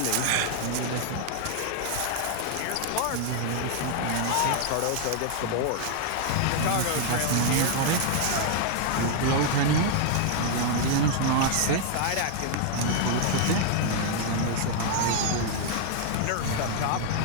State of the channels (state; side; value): different; both; correlation 0.00